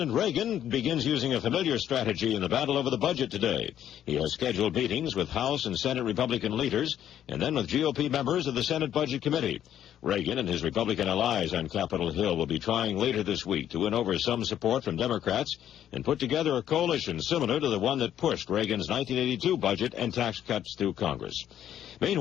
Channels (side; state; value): right; quieter; 10.7 dB